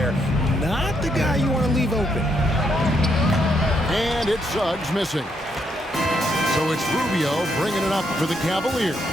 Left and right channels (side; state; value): both; normal; correlation 0.76